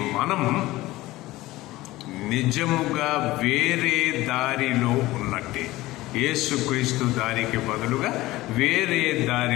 మనం నిజముగా వేరే దారిలో ఉన్నట్టే. యేసుక్రీస్తు దారికి బదులుగా వేరే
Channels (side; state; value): right; quieter; 18.0 dB